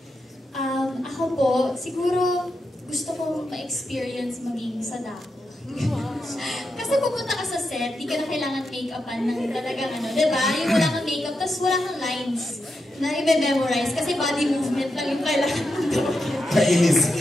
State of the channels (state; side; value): normal; both; correlation 0.86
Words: Ako po, siguro gusto kong ma-experience maging Sadako. Kasi pupunta ka sa set, di ka na kailangan make-upan ng talagang diba? Yung wala kang make-up, tapos wala kang lines na i-memorize kasi body movement lang yung kailangan mo gawin. Kainis.